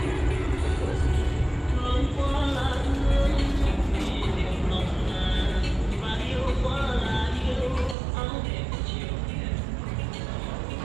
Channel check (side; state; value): left; drops out; at 8.0 s